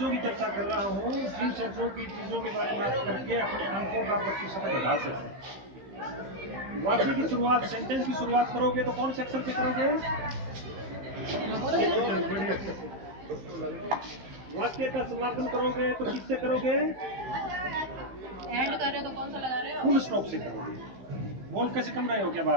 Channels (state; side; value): late; left; 15 ms